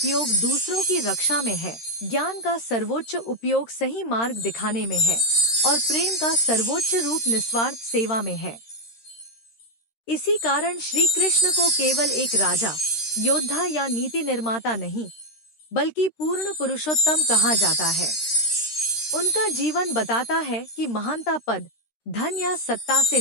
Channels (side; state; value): right; late; 13 ms